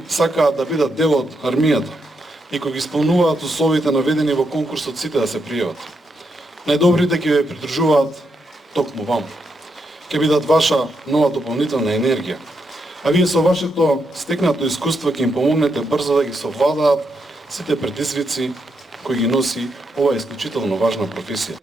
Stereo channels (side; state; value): both; normal; correlation 0.81